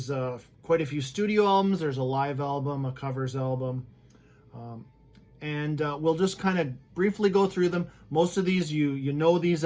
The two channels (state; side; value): identical; both; correlation 1.00